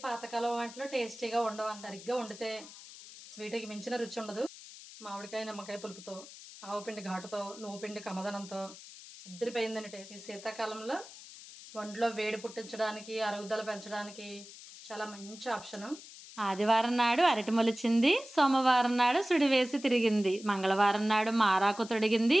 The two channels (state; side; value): noise; left; hiss, 16 dB below the sound